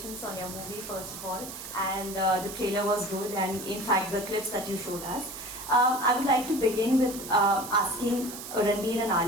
on your movie first of all, and the trailer was good, and in fact the clips that you showed us. I would like to begin with asking Ranveer and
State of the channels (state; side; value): noise; right; hiss, 10 dB below the sound